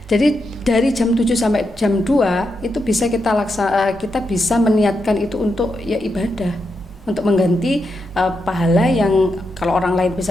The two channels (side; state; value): both; normal; correlation 0.84